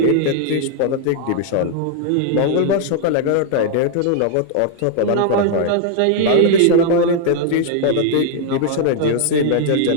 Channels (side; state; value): both; different; correlation 0.00